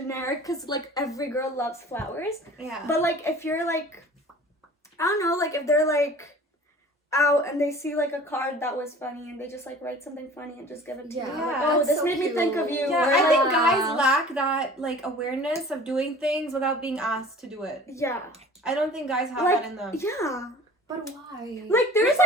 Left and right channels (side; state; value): both; normal; correlation 0.45